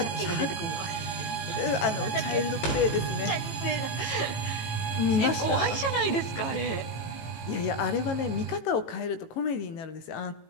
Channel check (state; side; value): late; right; 18 ms